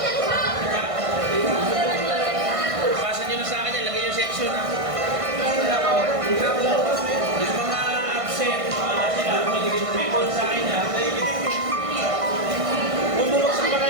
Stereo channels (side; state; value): left; late; 1.6 ms